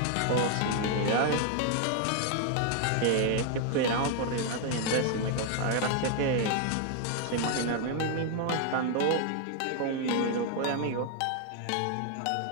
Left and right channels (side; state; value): both; different; correlation 0.00